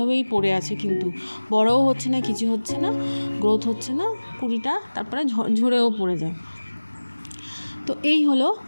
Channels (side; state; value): both; inverted; correlation -1.00